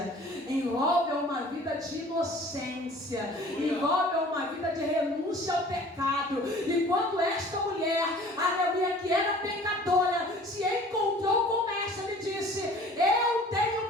envolve uma vida de inocência, envolve uma vida de renúncia ao pecado. E quando esta mulher, aleluia, que era pecadora, se encontrou com essa, me disse: eu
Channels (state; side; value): normal; both; correlation 0.48